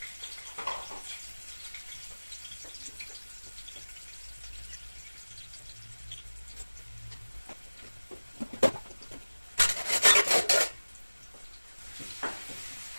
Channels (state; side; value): inverted; both; correlation -1.00